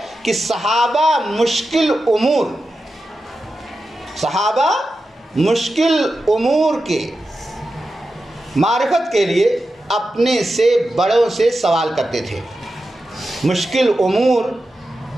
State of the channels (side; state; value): both; normal; correlation 0.91